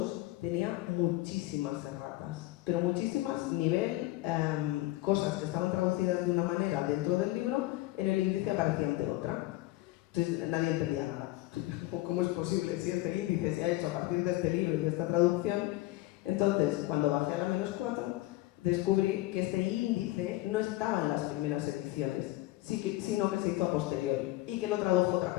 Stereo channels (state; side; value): quieter; right; 17.9 dB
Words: tenía muchísimas erratas, pero muchísimas, nivel cosas que estaban traducidas de una manera dentro del libro, en el índice aparecían de otra. Entonces nadie entendía nada. ¿Cómo es posible si este índice se ha hecho a partir de este libro y de esta traducción? Entonces, cuando bajé a la -4, descubrí que este índice no estaba en las primeras ediciones, sino que se hizo a posteriori y que lo tradujo